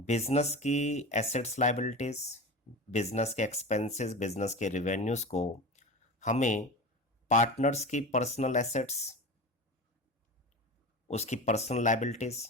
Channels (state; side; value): normal; both; correlation 0.29